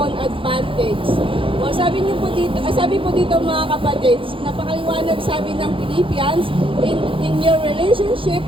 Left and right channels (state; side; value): late; left; 0.25 ms